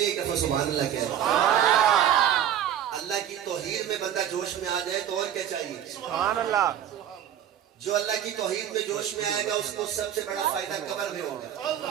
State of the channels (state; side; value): quieter; left; 10.2 dB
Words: ایک دفعہ سبحان اللہ کہہ. اللہ کی توحید میں بندہ جوش میں آ جائے تو اور کیا چاہیے؟ سبحان اللہ. جو اللہ کی توحید میں جوش میں آئے گا اس کو سب سے بڑا فائدہ قبر میں ہوگا.